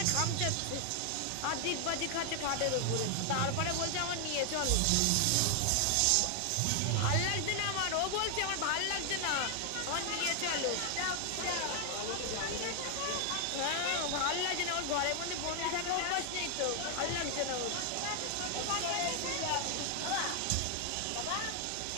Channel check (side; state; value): both; different; correlation 0.00